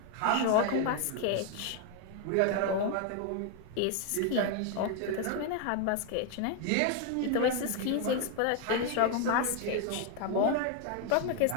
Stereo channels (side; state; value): both; different; correlation 0.01